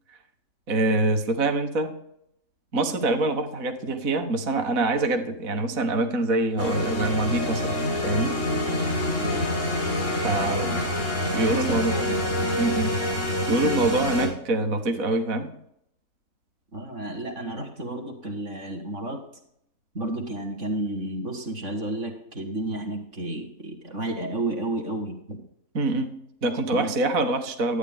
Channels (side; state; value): left; late; 4.0 ms